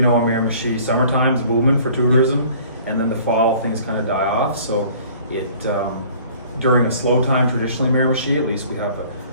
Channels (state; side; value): inverted; both; correlation -0.52